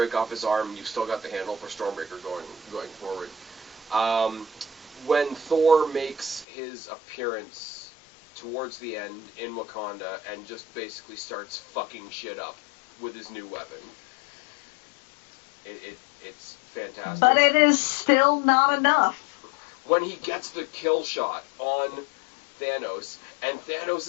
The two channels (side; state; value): right; drops out; at 6.5 s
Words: off his arm, you've still got the handle for Stormbreaker going forward. When Thor makes his appearance towards the end in Wakanda and just basically starts fucking shit up with his new weapon, it's fantastic. But it is still not enough. When he gets the kill shot on Thanos, and